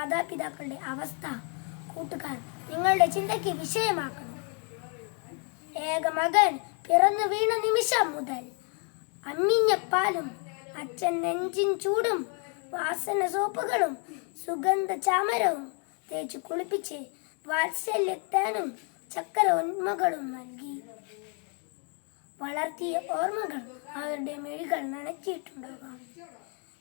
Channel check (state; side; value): quieter; right; 39.8 dB